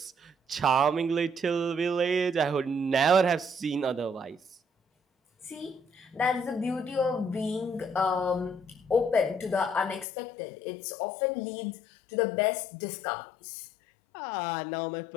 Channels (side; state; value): right; drops out; at 10.1 s